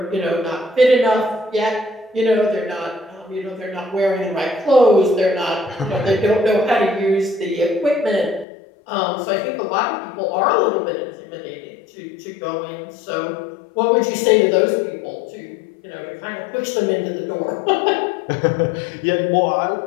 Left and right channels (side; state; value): right; drops out; at 8.5 s